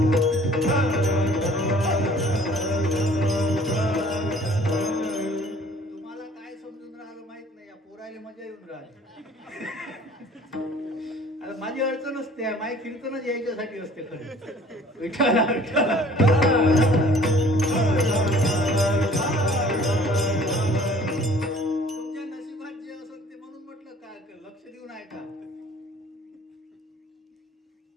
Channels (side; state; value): both; normal; correlation 0.53